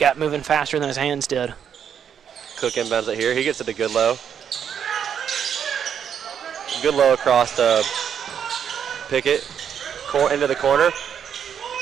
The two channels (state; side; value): quieter; left; 8.2 dB